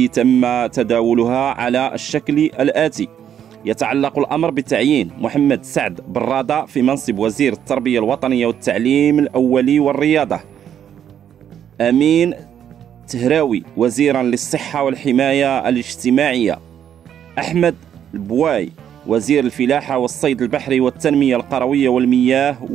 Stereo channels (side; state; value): left; quieter; 9.5 dB